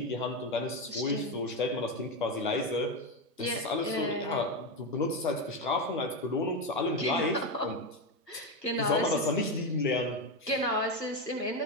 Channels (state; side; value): normal; both; correlation 0.12